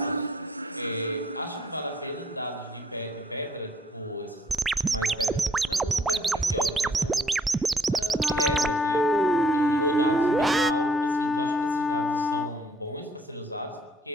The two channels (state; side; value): normal; both; correlation 0.63